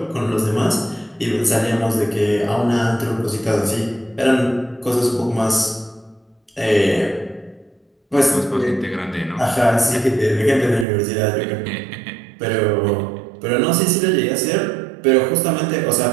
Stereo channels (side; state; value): left; drops out; at 10.9 s